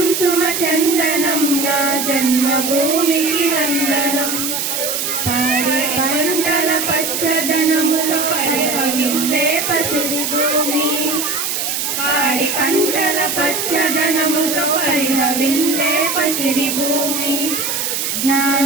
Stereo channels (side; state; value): right; noise; hiss, 1 dB below the sound